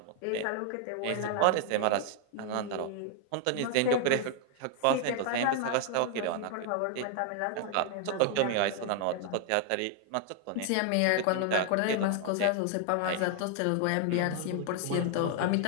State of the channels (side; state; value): both; different; correlation 0.00